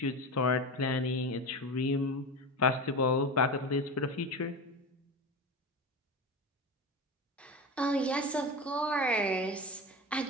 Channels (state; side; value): normal; both; correlation 0.26